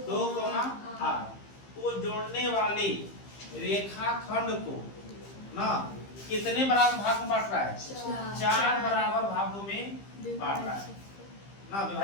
2,8। तो जोड़ने वाले रेखाखंड को ना कितने बराबर भाग में बांट रहा है? 4 बराबर भागों में बांट रहा है ना,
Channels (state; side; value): late; right; 15 ms